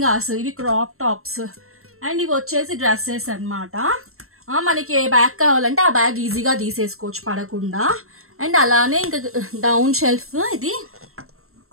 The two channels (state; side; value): late; left; 0.62 ms